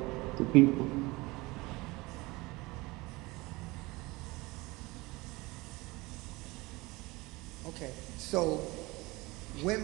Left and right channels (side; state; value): left; quieter; 22.6 dB